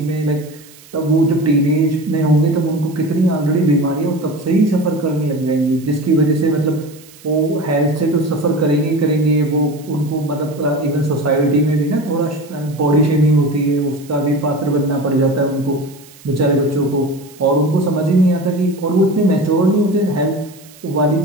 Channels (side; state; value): right; noise; hiss, 23 dB below the sound